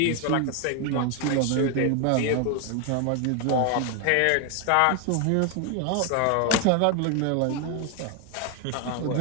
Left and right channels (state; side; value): different; both; correlation 0.01